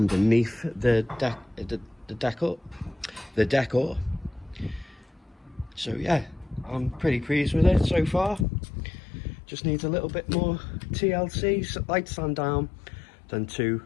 the decor. So yeah, I'm pretty pleased with it so far. Just needs a little bit more TLC, light sand down, then 2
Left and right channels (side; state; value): right; drops out; at 8.5 s